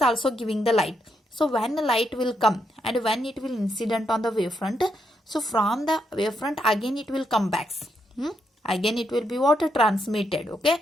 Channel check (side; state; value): both; normal; correlation 0.79